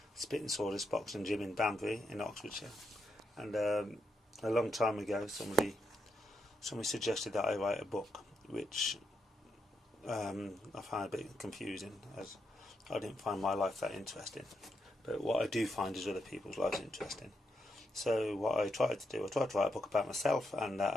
Spit and Sawdust boxing gym in Banbury in Oxfordshire, and a long time ago somebody suggested that I write a book, which I found a bit confusing, as I didn't find my life that interesting. But what I do find is other people's lives interesting. So what I tried to write a book about myself, and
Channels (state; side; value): normal; both; correlation 0.82